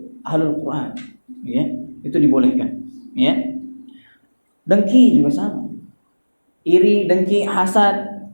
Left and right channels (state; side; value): inverted; both; correlation -1.00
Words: Quran, ya, itu dibolehkan, ya. Dengki juga sama. Iri, dengki, hasad,